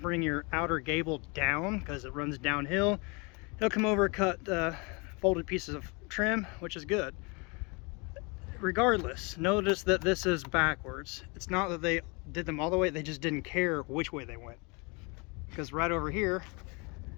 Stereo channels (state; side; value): quieter; right; 30.1 dB